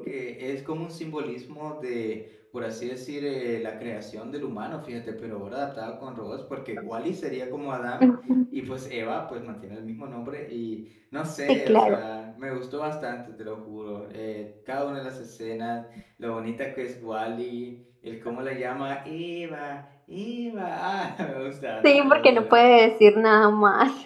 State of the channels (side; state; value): both; identical; correlation 1.00